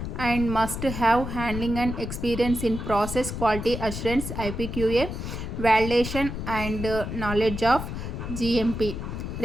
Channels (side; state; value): left; noise; rumble, 6 dB below the sound